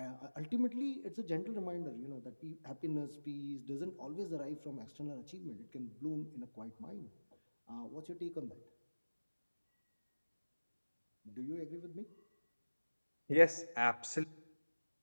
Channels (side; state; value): both; inverted; correlation -1.00